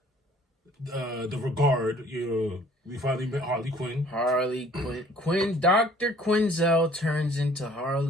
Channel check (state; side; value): normal; both; correlation 0.55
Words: the Regard. We finally met Harley Quinn. Dr. Quinzel turns into